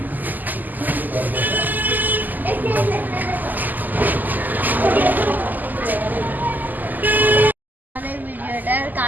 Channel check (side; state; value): left; late; 0.084 ms